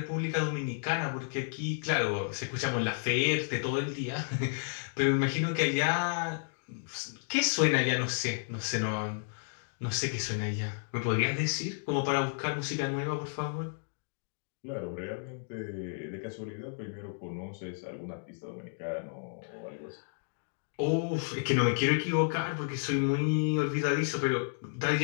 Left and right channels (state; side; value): silent; right; digital silence